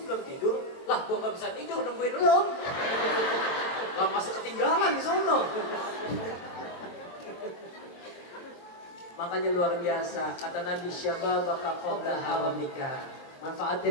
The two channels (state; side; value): late; right; 23 ms